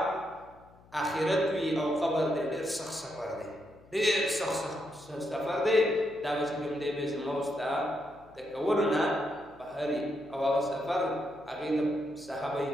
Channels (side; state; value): left; noise; hum, 26 dB below the sound